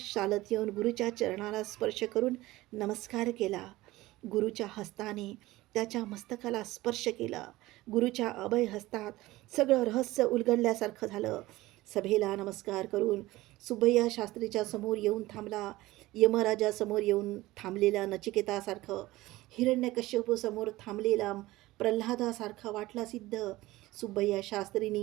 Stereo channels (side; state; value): left; quieter; 18.2 dB